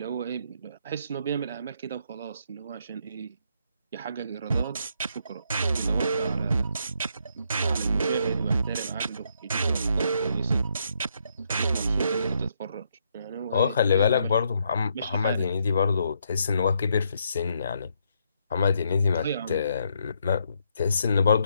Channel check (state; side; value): inverted; both; correlation -0.75